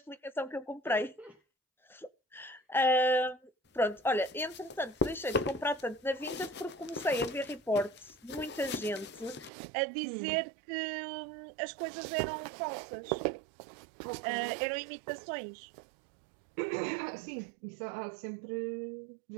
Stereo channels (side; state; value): left; drops out; at 9.5 s